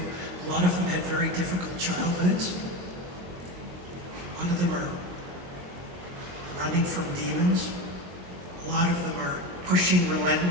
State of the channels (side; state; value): left; late; 22 ms